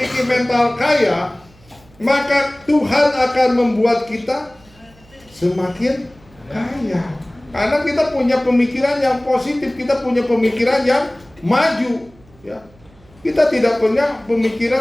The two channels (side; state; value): right; noise; hum, 28 dB below the sound